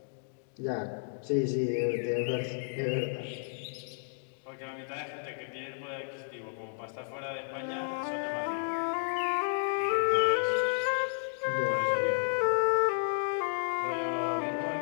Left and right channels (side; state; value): right; silent; digital silence